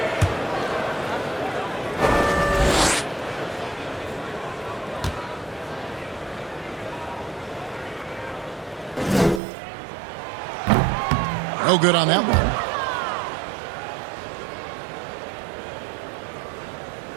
No good on that one.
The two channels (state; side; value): drops out; left; at 9.4 s